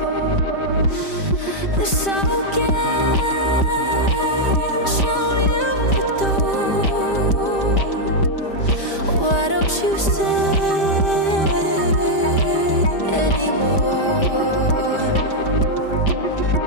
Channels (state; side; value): late; right; 5.1 ms